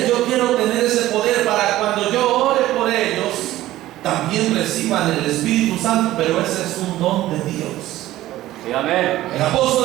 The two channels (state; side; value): quieter; left; 15.3 dB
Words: Yo quiero tener ese poder para cuando yo ore por ellos, también reciban el Espíritu Santo. Pero ese es un don de Dios. Sí, amén. El